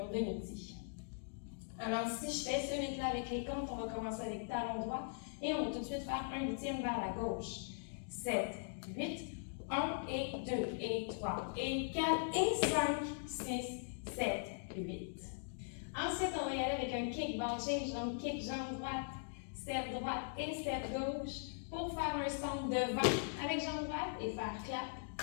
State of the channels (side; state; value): right; silent; digital silence